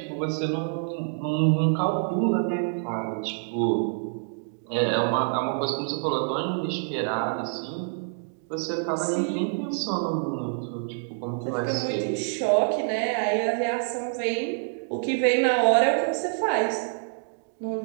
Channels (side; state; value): left; silent; digital silence